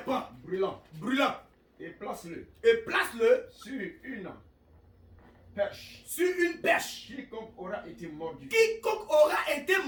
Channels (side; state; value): both; identical; correlation 1.00